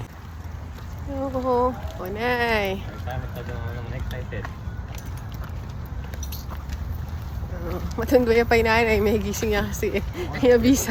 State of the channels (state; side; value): identical; both; correlation 1.00